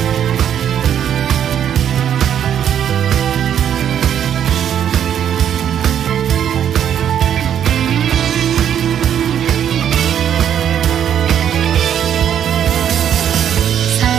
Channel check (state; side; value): quieter; left; 9.4 dB